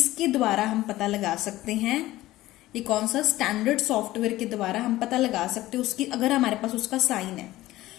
द्वारा हम पता लगा सकते हैं, ये कौन सा स्टैंडर्ड सॉफ्टवेयर के द्वारा हम पता लगा सकते हैं उसकी, अगर हमारे पास उसका साइन है।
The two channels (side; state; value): right; quieter; 16.4 dB